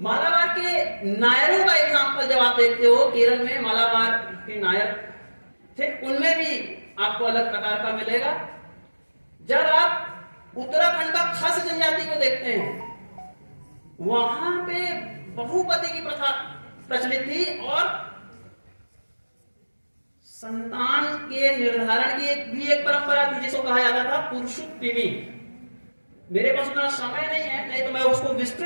के नायरों का एग्जाम्पल जब आप देखते हो, केरल में मालाबार के नायर थे, उनमें भी आपको अलग प्रकार का मिलेगा। जब आप उत्तराखंड का खस जनजाति को देखते हैं वहां पे बहुपति की प्रथा प्रचलित थी और संतान के निर्धारण की भी एक परंपरा थी जिसको कहा जाता था पुरुषोत्तमी। मेरे पास उतना समय नहीं है, नहीं तो मैं उसको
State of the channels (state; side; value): inverted; both; correlation -1.00